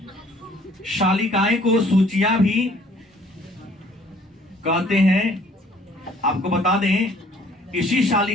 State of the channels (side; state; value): both; normal; correlation 0.57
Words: शालिकाएं को सूचियां भी कहते हैं। आपको बता दें, इसी